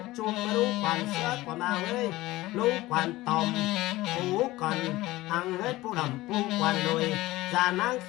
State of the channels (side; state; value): right; quieter; 18.2 dB